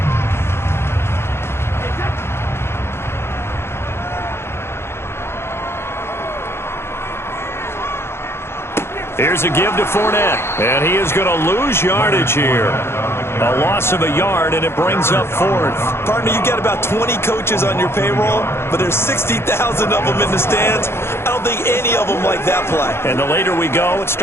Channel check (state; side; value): late; right; 0.12 ms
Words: Here's a give to Fournette, and he is going to lose yardage here. A loss of a yard, and it brings up 4th. Partner, you got about 20 coaches on your payroll, but there's 60,000 of them in the stands. I don't think any of them like that play. And the later we go, it's